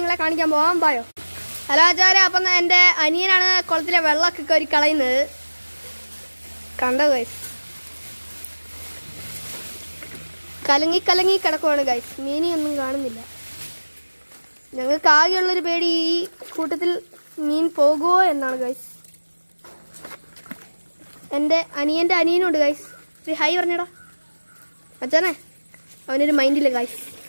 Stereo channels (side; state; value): both; inverted; correlation -1.00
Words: കാണിക്കാൻ പോകാൻ പോയോ. ഹലോ മച്ചാരെ, അപ്പം എൻ്റെ അനിയനാണ് കുളത്തിലെ വെള്ളമൊക്കെ കോരി കളയുന്നത്. കണ്ടോ ഗൈസ്, കലങ്ങി കലങ്ങി കിടക്കുവാണ് ഗൈസ്. മീനിയൊന്നും കാണുന്നില്ല. ഞങ്ങൾക്ക് ആകെയുള്ളൊരു പേടി ഈ കൂട്ടത്തിൽ മീൻ പോകുമോ എന്നാണ് ഗൈസ്. എൻ്റെ അനിയൻ്റെ അനിയനുണ്ട് ഗൈസ്. ഒരു ഹൈ പറഞ്ഞടാ അച്ഛനെ. അവനൊരു മൈൻഡില്ല ഗൈസ്.